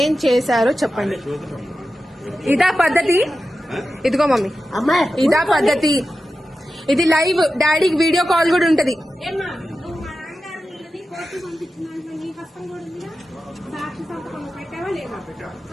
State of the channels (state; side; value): normal; both; correlation 0.92